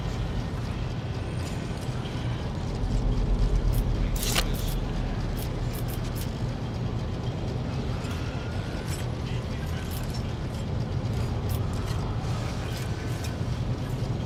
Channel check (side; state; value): both; identical; correlation 1.00